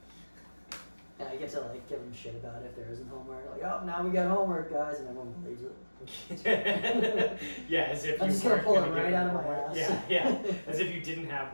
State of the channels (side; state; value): both; inverted; correlation -1.00